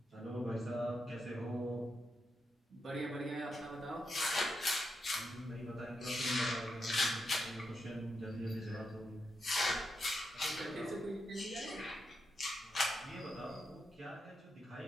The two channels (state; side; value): normal; both; correlation 0.84